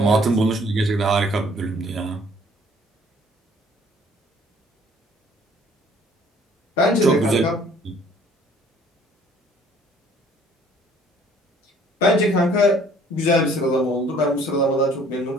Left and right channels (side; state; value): both; normal; correlation 0.57